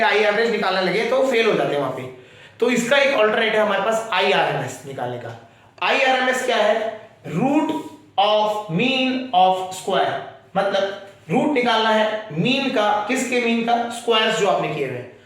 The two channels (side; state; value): both; identical; correlation 1.00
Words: आई एवरेज निकालने लगे तो फेल हो जाते हैं वहां पे, तो इसका एक अल्टरनेट है हमारे पास आई आरएमएस निकालने का। आई आरएमएस क्या है, root of mean of square, मतलब रूट निकालना है मीन का, किसके मीन का, स्क्वायर्स जो आपने किए हुए हैं।